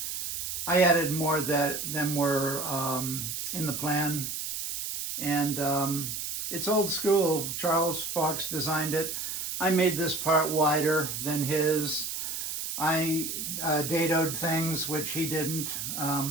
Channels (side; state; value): right; noise; hiss, 4 dB below the sound